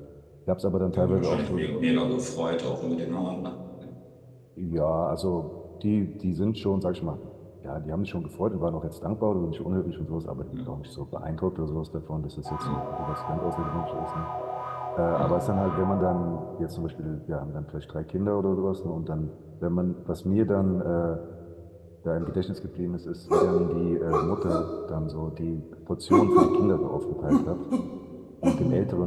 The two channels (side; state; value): both; identical; correlation 1.00